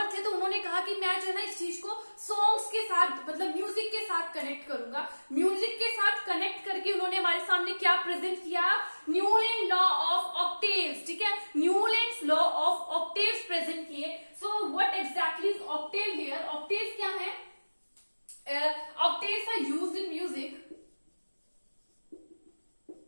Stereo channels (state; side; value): inverted; both; correlation -1.00